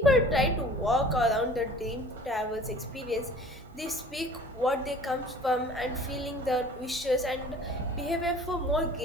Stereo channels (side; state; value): both; normal; correlation 0.47